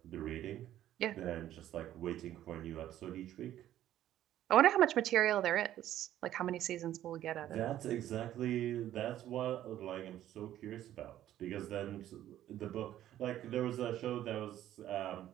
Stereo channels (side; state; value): left; quieter; 12.5 dB